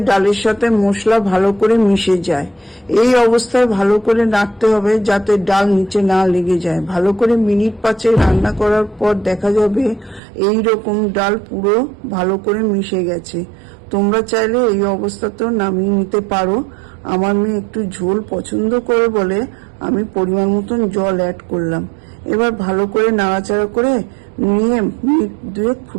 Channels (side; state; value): left; drops out; at 10.2 s